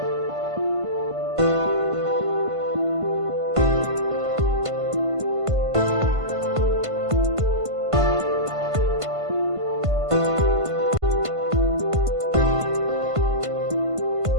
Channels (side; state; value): left; late; 1.5 ms